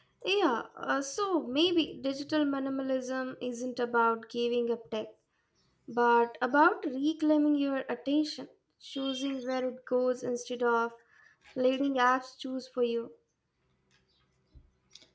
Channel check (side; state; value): both; identical; correlation 1.00